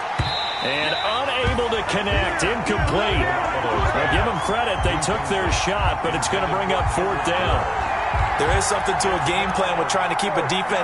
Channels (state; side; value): identical; both; correlation 1.00